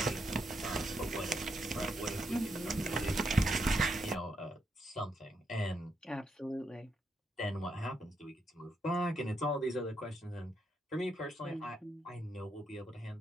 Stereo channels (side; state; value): both; normal; correlation 0.80